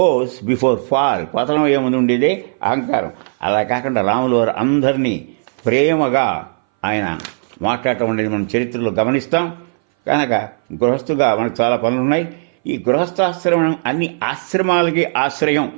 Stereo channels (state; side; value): silent; left; 61 dB below the other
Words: బిఫోర్ ఫాల్, పతనం అయ్యే ముందు ఉండేదే అహంకారం. అలా కాకుండా రాములు వారు అందరినీ ప్రేమగా ఆయన మాట్లాడటం అనేది మనం చరిత్రలో గమనిస్తాం. కనుక గృహస్థుగా మనకు చాలా పనులు ఉన్నాయి. ఈ గృహస్థాశ్రమం అన్ని ఆశ్రమాలకి ఆశ్రయం